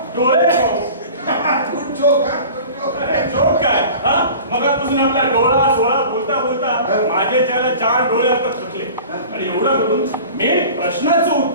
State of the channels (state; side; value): inverted; both; correlation -0.40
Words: डोळे. जोक काय? मगापासून आपला डोळा सोळा बोलता माझे त्याला 4 डोळे आता थकले आणि एवढं करून मेन प्रश्नाचं